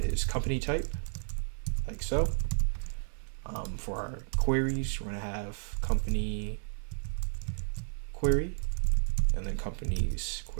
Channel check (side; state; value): left; silent; 56 dB below the other